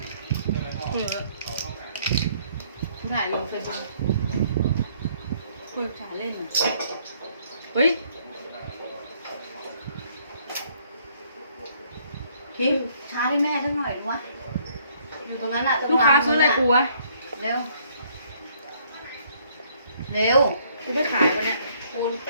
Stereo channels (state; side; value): inverted; both; correlation -0.65